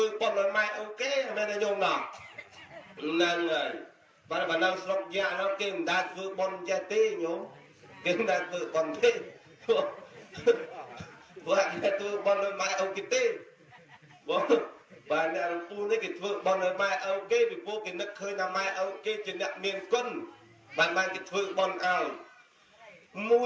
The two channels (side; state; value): both; identical; correlation 1.00